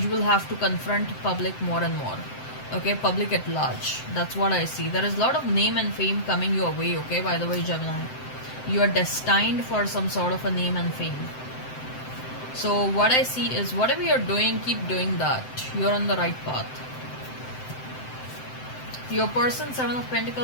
will have to confront public more and more. Okay. Public at large. That's what I see. There is a lot of name and fame coming your way. Okay. By the way, Gemini. You are destined for some sort of a name and fame. So what I see is whatever you're doing, keep doing that. You're on the right path. Your person, Seven of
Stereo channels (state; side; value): late; right; 7.8 ms